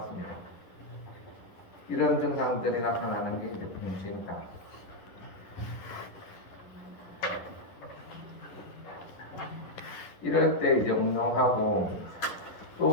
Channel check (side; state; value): right; late; 11 ms